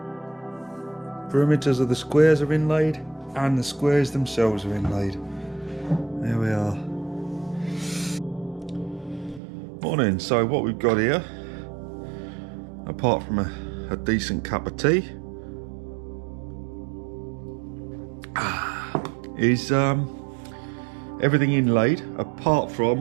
Perimeters of the squares are inlaid, and the squares themselves are inlaid. There we are. Morning. So what we've got here, apart from a decent cup of tea, is everything inlaid apart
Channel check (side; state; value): left; drops out; at 9.4 s